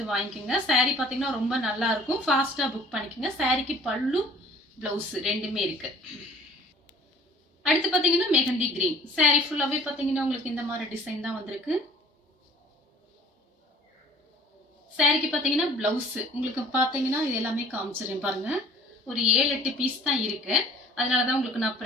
வாங்கிக்கோங்க. சாரி பாத்தீங்கன்னா ரொம்ப நல்லா இருக்கும், ஃபாஸ்டா புக் பண்ணிக்கோங்க. சாரிக்கு பல்லு பிளவுஸ் ரெண்டுமே இருக்கு. அடுத்து பாத்தீங்கன்னா மெஹந்தி கிரீன் சாரி ஃபுல்லாவே பாத்தீங்கன்னா உங்களுக்கு இந்த மாதிரி டிசைன் தான் வந்திருக்கு. சாரிக்கு பாத்தீங்கன்னா பிளவுஸ் உங்களுக்கு பாத்தீங்கன்னா இது எல்லாமே காமிச்சிருக்கேன் பாருங்க. ஒரு 7-8 பீஸ் தான் இருக்கு, அதனாலதான் உங்களுக்கு நான்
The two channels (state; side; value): normal; both; correlation 0.51